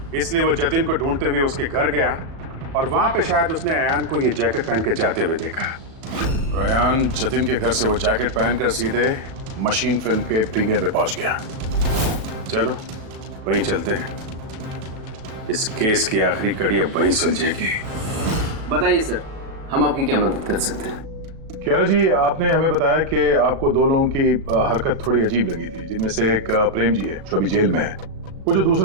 इसलिए वो जतिन को ढूंढते हुए उसके घर गया और वहां पे शायद उसने अयान को ये जैकेट पहन के जाते हुए देखा। अयान जतिन के घर से वो जैकेट पहनकर सीधे मशीन फिल्म के प्रीमियर में पहुंच गया। चलो वहीं चलते हैं, इस केस की आखिरी कड़ी अब वहीं सुलझेगी। बताइए सर, हम आपकी क्या मदद कर सकते हैं? कियारा जी, आपने हमें बताया कि आपको 2 लोगों की हरकत थोड़ी अजीब लगी थी, जिनमें से एक प्रेम जी है जो अभी जेल में है। वो जो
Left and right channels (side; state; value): left; late; 37 ms